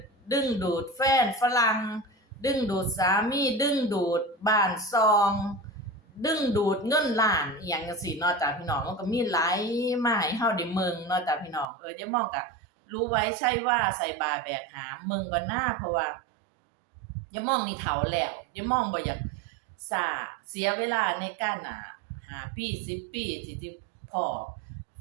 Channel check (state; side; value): drops out; left; at 11.7 s